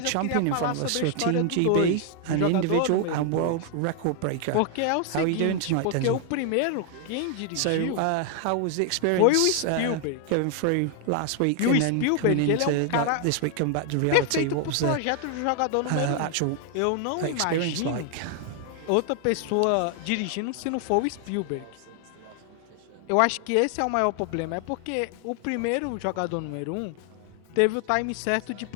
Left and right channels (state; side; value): different; both; correlation 0.00